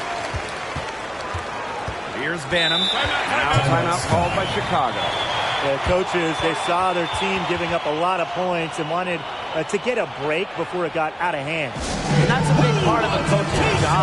Here's Banham. Now timeout called by Chicago. The coaches, they saw their team giving up a lot of points and wanted to get a break before it got out of hand. And that's a big part of a coach's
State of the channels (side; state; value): both; identical; correlation 1.00